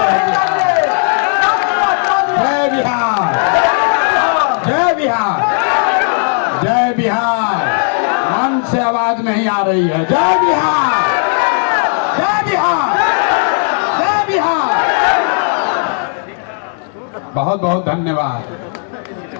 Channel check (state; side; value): silent; right; 57 dB below the other